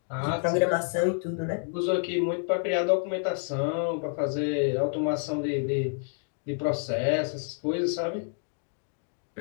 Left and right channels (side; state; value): right; silent; 59 dB below the other